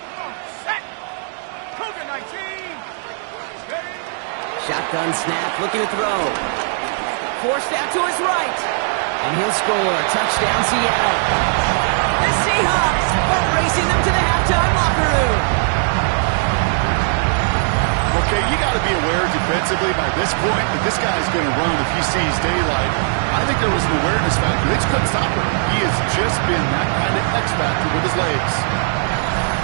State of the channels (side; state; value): left; silent; 63 dB below the other